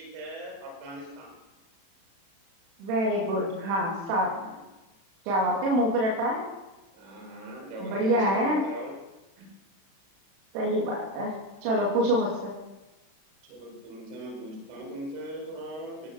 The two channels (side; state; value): left; late; 36 ms